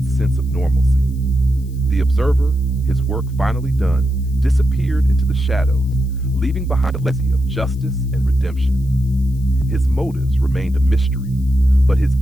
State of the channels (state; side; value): noise; left; hiss, 28 dB below the sound